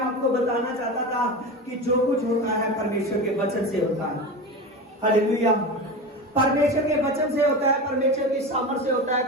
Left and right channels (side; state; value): both; normal; correlation 0.26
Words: बताना चाहता था कि जो कुछ होता है परमेश्वर के वचन से होता है। हालेलुया। परमेश्वर के वचन से होता है, परमेश्वर की सामर्थ से होता है,